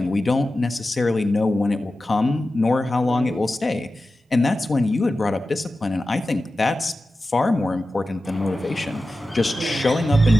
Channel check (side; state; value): both; normal; correlation 0.93